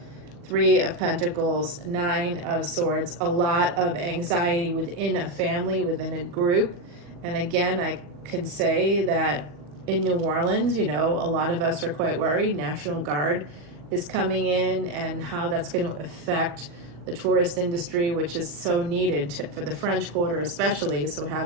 Three of Pentacles, Nine of Swords, a lot of anxiety within a family, within a group. And again, I can say that in New Orleans, you know, a lot of us are quite worried. National Guard is coming in, and how that's going to affect the tourist industry, which is so needed for the French Quarter especially. So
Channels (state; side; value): late; left; 40 ms